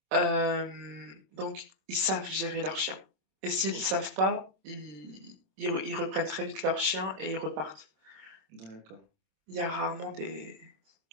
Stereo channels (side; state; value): left; late; 26 ms